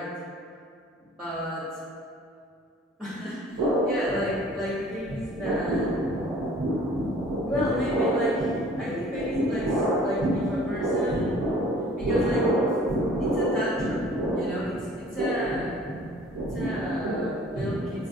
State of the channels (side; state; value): both; normal; correlation 0.51